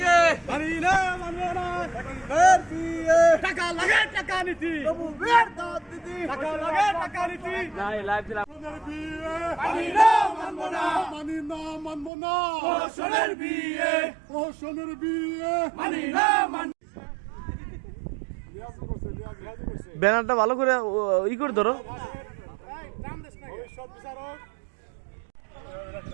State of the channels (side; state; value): left; drops out; at 12.1 s